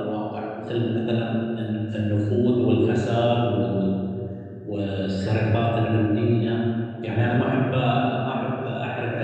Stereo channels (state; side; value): identical; both; correlation 1.00